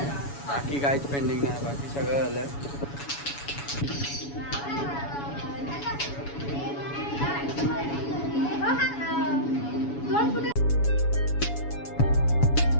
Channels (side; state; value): right; late; 7.1 ms